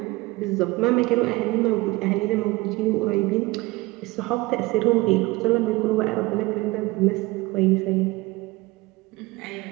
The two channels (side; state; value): left; quieter; 21.5 dB